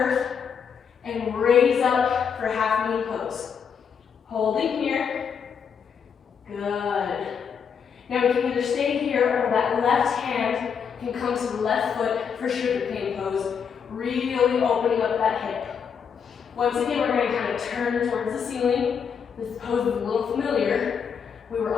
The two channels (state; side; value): quieter; right; 6.9 dB